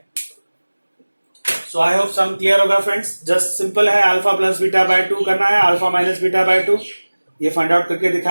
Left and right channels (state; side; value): inverted; both; correlation -1.00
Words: सो आई होप सम क्लियर होगा फ्रेंड्स। जस्ट सिंपल है, अल्फा प्लस बीटा बाय 2 करना है, अल्फा माइनस बीटा बाय 2 ये फाइंड आउट करके